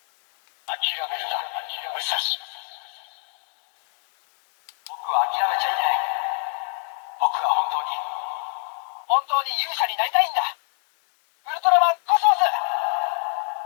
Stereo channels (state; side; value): silent; right; digital silence